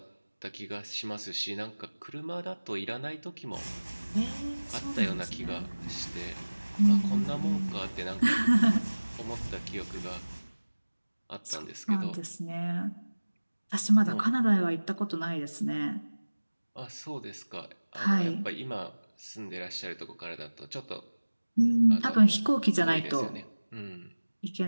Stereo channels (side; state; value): both; inverted; correlation -1.00